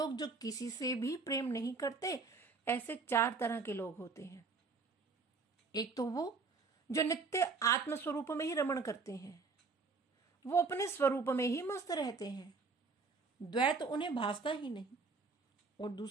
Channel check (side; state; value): left; quieter; 4.4 dB